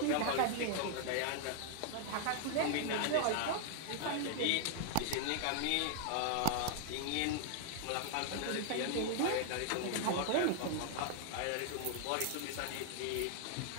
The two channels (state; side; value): different; both; correlation 0.00